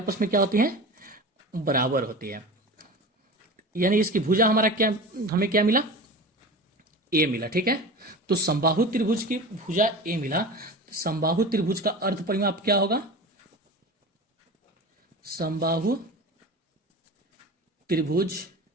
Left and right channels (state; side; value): normal; both; correlation 0.32